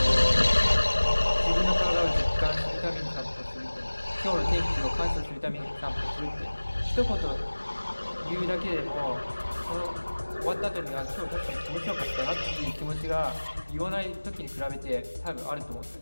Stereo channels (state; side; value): inverted; both; correlation -1.00